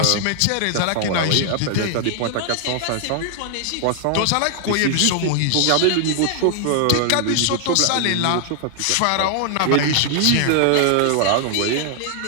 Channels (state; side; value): different; both; correlation 0.00